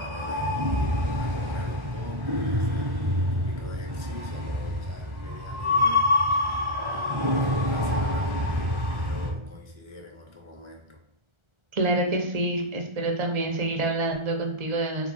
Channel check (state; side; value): late; left; 1.3 ms